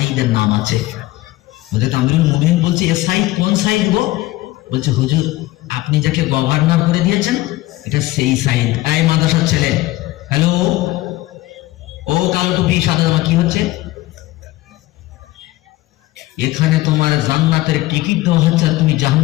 নাম আছে। হযরত আমিরুল মুমিনিন বলছে এ সাইদ কোন সাইদ গো? বলছে হুজুর আপনি যাকে গভর্নর করে দিয়েছেন এটা সেই সাইদ। এই মাদ্রাসার ছেলে, হ্যালো, ও কালো টুপি সাদা জামা কি হচ্ছে এখানে? তোমার জান্নাতের টিকিট দেওয়া হচ্ছে আর তুমি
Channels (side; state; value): right; quieter; 17.9 dB